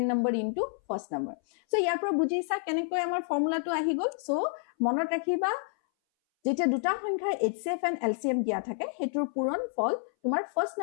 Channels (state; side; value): silent; right; 58 dB below the other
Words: number into first number so yar pro bujhi sa kenekoi amar formula tu ahi gol so monot rakhiba যেটা দুটা সংখ্যা HCF and LCM দিয়া থাকে হেতৰ পূৰণ ফল তোমাৰ first